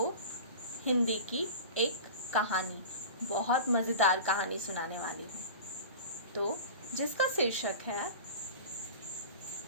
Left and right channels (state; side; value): inverted; both; correlation -0.34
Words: हिंदी की एक कहानी, बहुत मज़ेदार कहानी सुनाने वाली हूँ। तो जिसका शीर्षक है